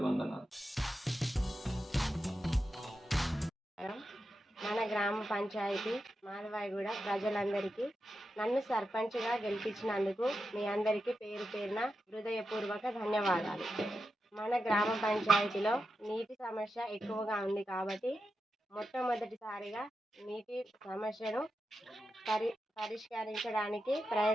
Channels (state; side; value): normal; both; correlation 0.89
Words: మన గ్రామ పంచాయతీ మాధవాయిగూడ ప్రజలందరికీ నన్ను సర్పంచ్గా గెలిపించినందుకు మీ అందరికీ పేరు పేరున హృదయపూర్వక ధన్యవాదాలు. మన గ్రామ పంచాయతీలో నీటి సమస్య ఎక్కువగా ఉంది కాబట్టి మొట్టమొదటిసారిగా నీటి సమస్యను పరిష్కరించడానికి